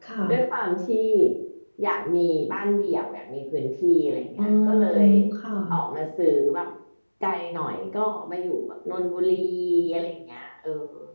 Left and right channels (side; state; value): both; inverted; correlation -1.00